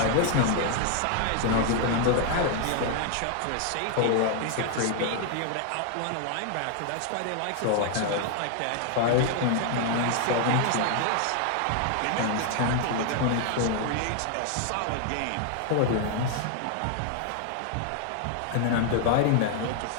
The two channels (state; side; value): different; both; correlation 0.00